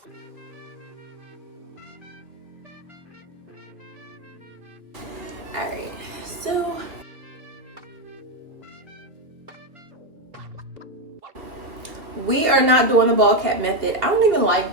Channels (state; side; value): late; left; 2.6 ms